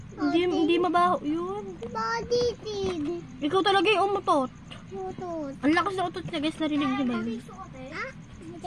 Hindi mabaho yun. Body feed. Ikaw talaga yung umutot. Putot. Ang lakas na utot niya, guys. Narinig niyo ba yun?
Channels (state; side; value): identical; both; correlation 1.00